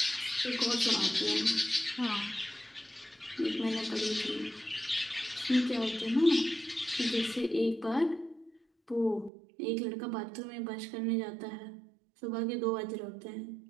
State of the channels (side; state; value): left; drops out; at 9.3 s